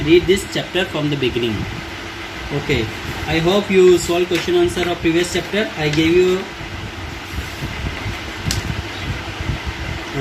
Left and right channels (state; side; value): identical; both; correlation 1.00